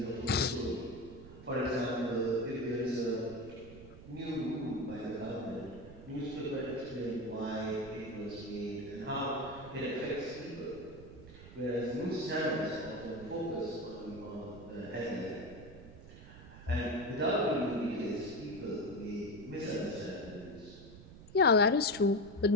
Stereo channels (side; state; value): right; noise; rumble, 16 dB below the sound